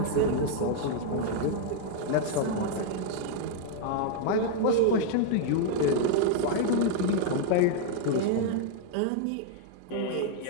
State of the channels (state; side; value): different; both; correlation 0.00